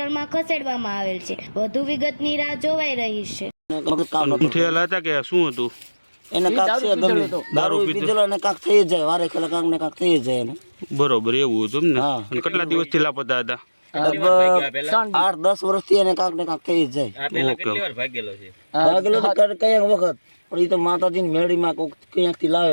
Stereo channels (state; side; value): inverted; both; correlation -1.00